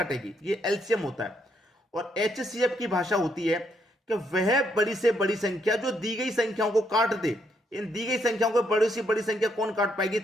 ये एलसीएम होता है। और एचसीएफ की भाषा होती है कि वह बड़ी से बड़ी संख्या जो दी गई संख्याओं को काट दे। इन दी गई संख्याओं को बड़ी से बड़ी संख्या कौन काट पाएगी,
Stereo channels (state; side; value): normal; both; correlation 0.74